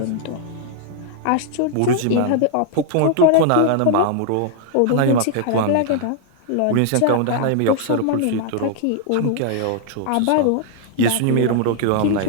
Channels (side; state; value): both; different; correlation 0.00